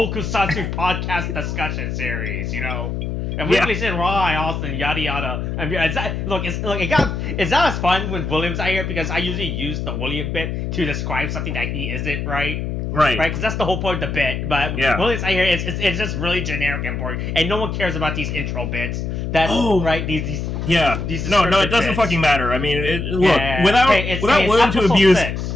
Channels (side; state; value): left; noise; hum, 3 dB below the sound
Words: podcast discussion series, you know. And weekly said Rai, Austin, yada yada. I mean, it's not as fun when William's out here because I usually use the William bit to describe something that he isn't, right? Right. Because that's the whole point of the bit. But really, I hear it's just really generic and boring, and no one cares about these intro bits. That right? These These no, it doesn't bits. fucking matter. I mean, look, Yeah. without